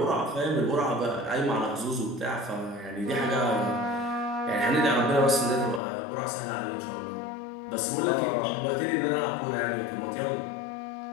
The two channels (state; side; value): drops out; right; at 5.8 s